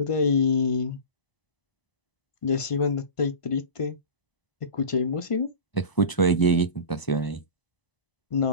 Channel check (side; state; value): right; late; 1.0 ms